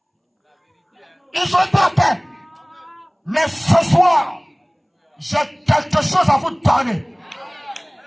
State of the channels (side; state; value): both; identical; correlation 1.00